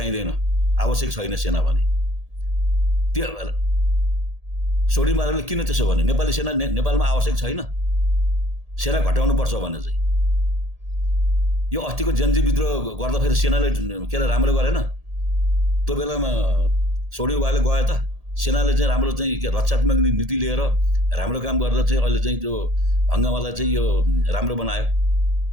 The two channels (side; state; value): left; late; 1.8 ms